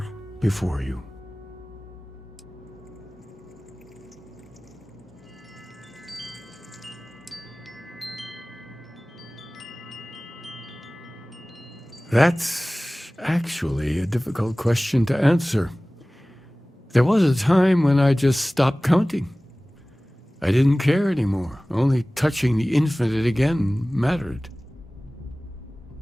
before you. That's actually a difficult question to answer. There was a time when I just stopped counting. I didn't care anymore. Only touching the infinite again mattered.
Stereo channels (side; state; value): both; normal; correlation 0.98